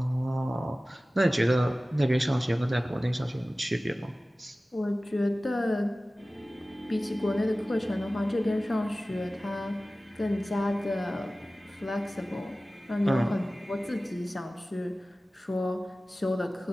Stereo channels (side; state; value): both; normal; correlation 0.97